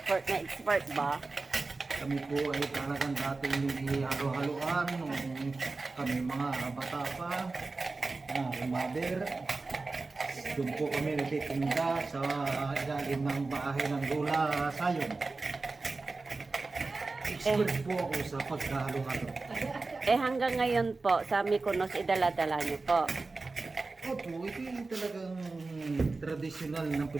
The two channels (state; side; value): quieter; left; 3.7 dB